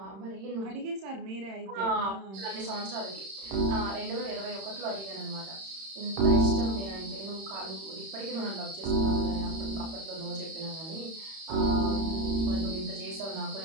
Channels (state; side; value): late; left; 31 ms